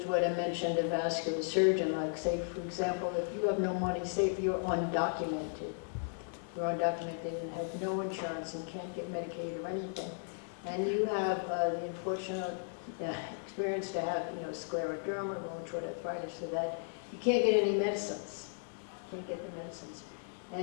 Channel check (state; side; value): silent; right; digital silence